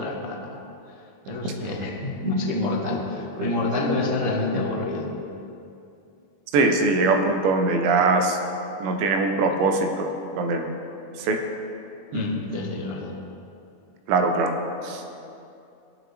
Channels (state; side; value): late; left; 21 ms